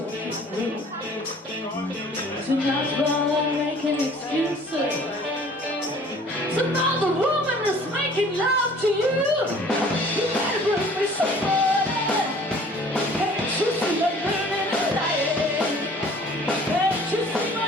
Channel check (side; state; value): both; normal; correlation 0.51